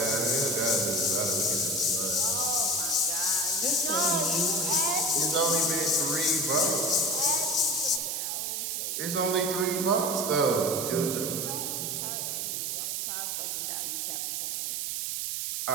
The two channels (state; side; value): noise; right; hiss, 1 dB below the sound